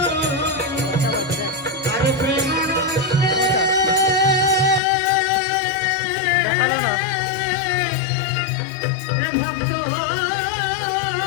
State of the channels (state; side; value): drops out; right; at 4.8 s